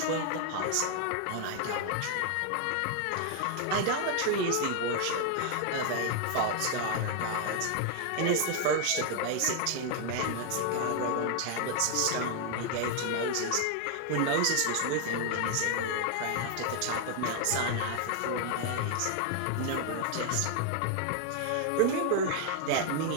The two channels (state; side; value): different; both; correlation 0.00